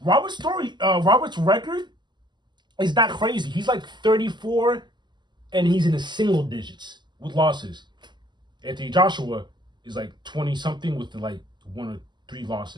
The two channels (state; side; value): late; left; 0.21 ms